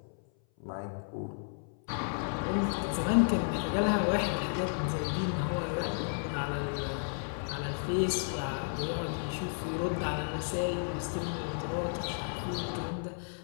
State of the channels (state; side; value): silent; right; 56 dB below the other